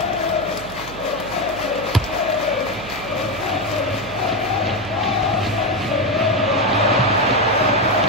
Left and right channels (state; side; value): noise; right; hum, 16 dB below the sound